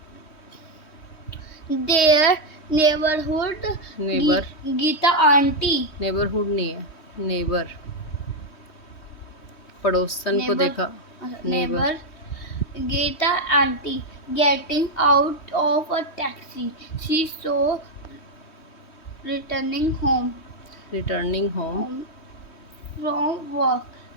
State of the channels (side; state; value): right; late; 3.1 ms